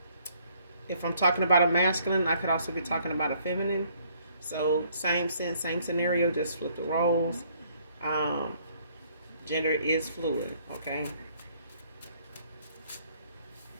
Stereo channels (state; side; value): inverted; both; correlation -0.64